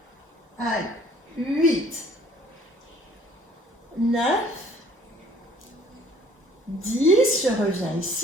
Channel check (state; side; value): normal; both; correlation 0.56